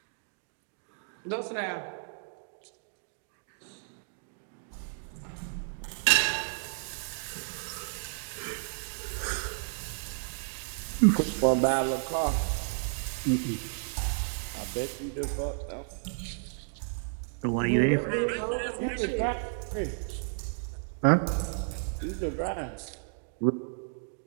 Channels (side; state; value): left; silent; digital silence